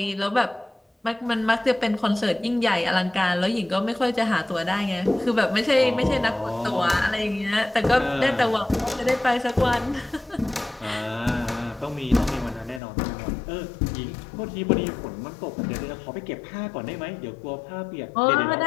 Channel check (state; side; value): drops out; right; at 12.8 s